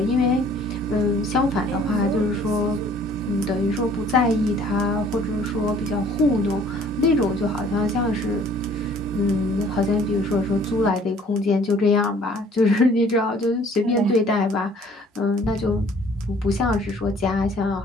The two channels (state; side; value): normal; both; correlation 0.55